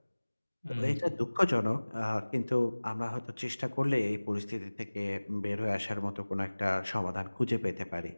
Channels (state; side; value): inverted; both; correlation -1.00